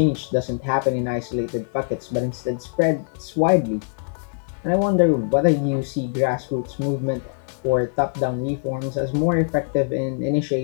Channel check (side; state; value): right; silent; 61 dB below the other